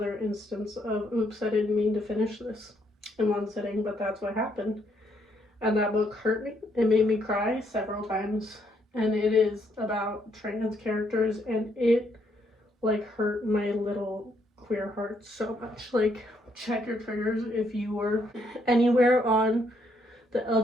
instance of, oops, I didn't mean to finish this in one sitting, but that's what happened. And that book hurt me. It made me cry several times. And it is about trans characters, and it like hurt my little queer heart so much. Like, check your triggers if you were anywhere on the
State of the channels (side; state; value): both; normal; correlation 0.73